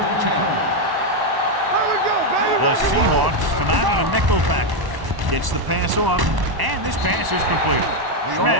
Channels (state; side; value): late; left; 1.1 ms